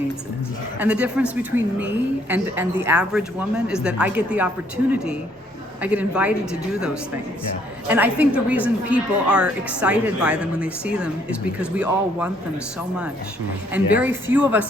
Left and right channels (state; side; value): normal; both; correlation 0.66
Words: it. And the difference between me and the average woman is that I get the opportunity, I get invited to do those things. Yeah. And I think the reason people are excited by them when they see them is because we all want them so much. And very few of